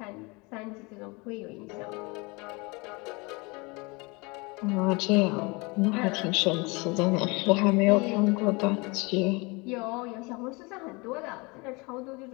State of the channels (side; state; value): right; quieter; 27.2 dB